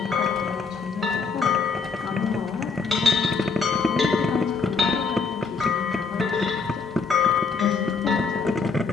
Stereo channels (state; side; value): quieter; right; 4.8 dB